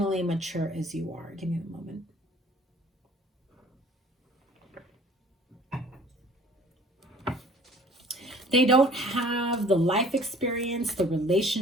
mature as you are. Give me a moment. They don't have the life experience, the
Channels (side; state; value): both; normal; correlation 0.51